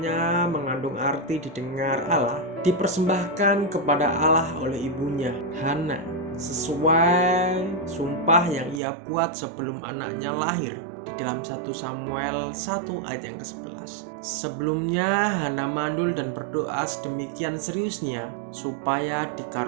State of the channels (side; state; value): left; drops out; at 8.8 s